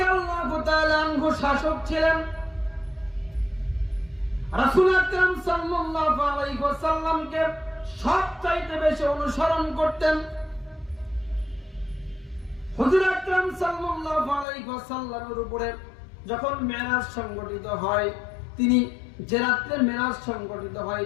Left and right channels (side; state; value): right; drops out; at 14.5 s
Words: তাআলা আনহু শাসক ছিলেন। রাসূল আকরাম সাল্লাল্লাহু আলাইহি ওয়াসাল্লামকে সবচাইতে বেশি অনুসরণ করতেন। হুজুর আকরাম সাল্লাল্লাহু আলাইহি ওয়াসাল্লামের উপরে যখন মেরাজ সংগঠিত হয়, তিনি যে রাত্রে মেরাজ সংগঠিত হয়